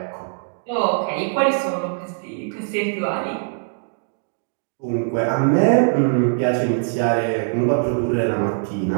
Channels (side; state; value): left; silent; digital silence